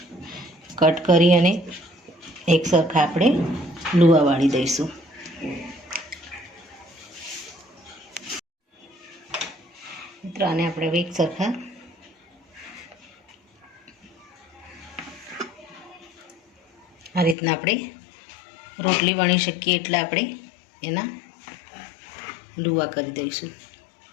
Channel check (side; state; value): right; drops out; at 17.4 s